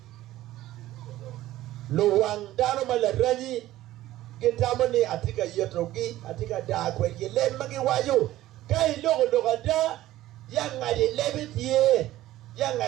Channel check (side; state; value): left; quieter; 14.9 dB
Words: lo wang dano malaranyi kitamo ni atika yetrogi atika da kwe yelen magi wayo kai logo da yang ngadi lebit ye yang